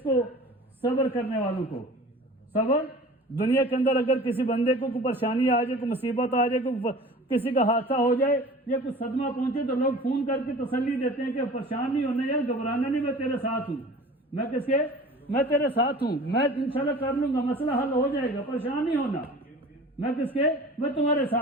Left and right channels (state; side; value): normal; both; correlation 0.42